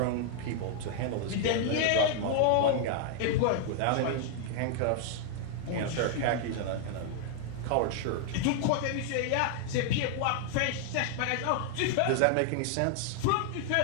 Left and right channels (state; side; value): different; both; correlation 0.00